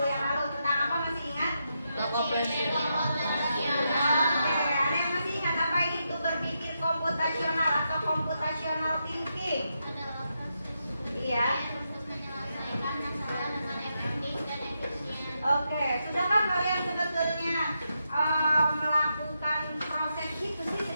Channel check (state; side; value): inverted; both; correlation -0.83